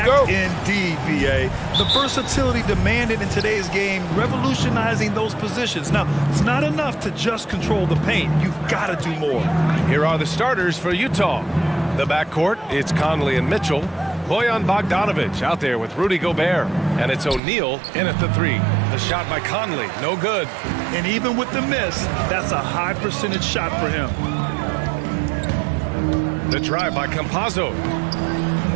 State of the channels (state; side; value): drops out; left; at 17.4 s